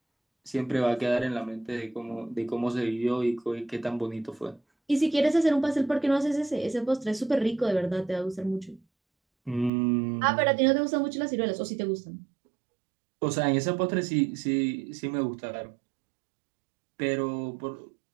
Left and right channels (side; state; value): left; drops out; at 9.7 s